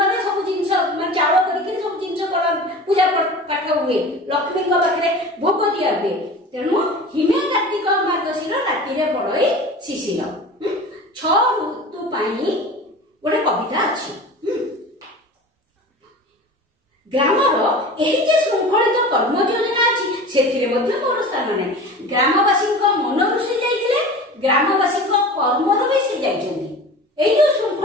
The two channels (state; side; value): normal; both; correlation 0.37